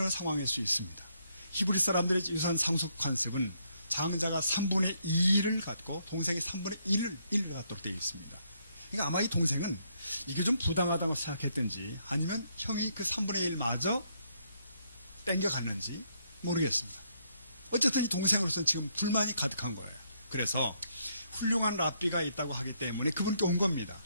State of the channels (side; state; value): both; inverted; correlation -0.73